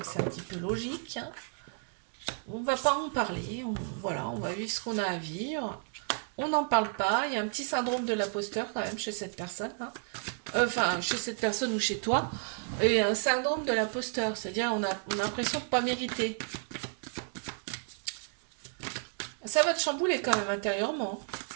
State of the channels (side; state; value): left; silent; 56 dB below the other